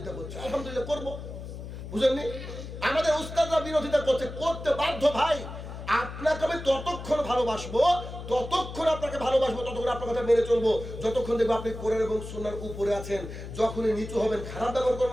করছে, আলহামদুলিল্লাহ করব, বুঝেননি? আমাদের উস্তাদরা বিরোধিতা করছে, করতে বাধ্য ভাই। আপনাকে আমি ততক্ষণ ভালোবাসবো, ততক্ষণ আপনাকে ভালোবাসবো, ততক্ষণ আপনার কথা মেনে চলবো যতক্ষণ দেখবো আপনি কোরআন এবং সুন্নাহর উপরে আছেন। যখনই নিচু হবেন খারাপ ব্যবহার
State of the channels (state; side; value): noise; left; hum, 10 dB below the sound